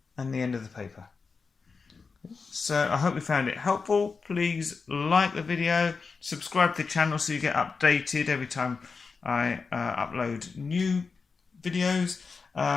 and the end of the paper. So I hope you found it helpful. Please like the video, subscribe to the channel so you get updated every time I upload new videos.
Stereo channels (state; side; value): quieter; right; 4.8 dB